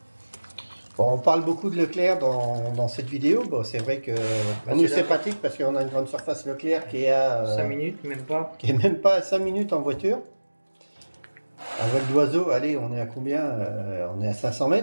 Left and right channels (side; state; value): both; inverted; correlation -1.00